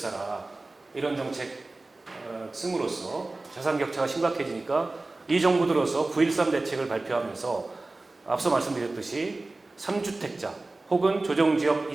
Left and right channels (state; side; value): quieter; left; 3.1 dB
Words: 이런 정책 씀으로써 자산 격차가 심각해지니까 이 정부 들어서 9.13 대책을 발표하면서 앞서 말씀드렸듯이 3주택자 혹은 조정지역